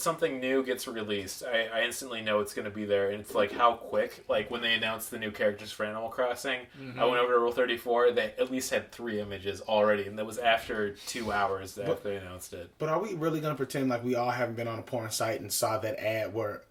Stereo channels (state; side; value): identical; both; correlation 1.00